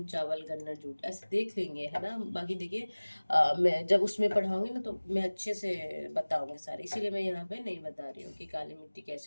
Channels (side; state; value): both; inverted; correlation -1.00